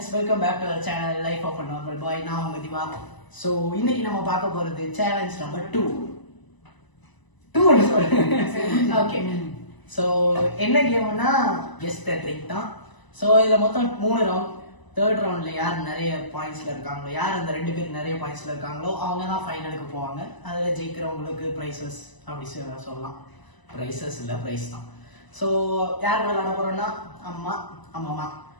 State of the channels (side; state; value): right; late; 1.0 ms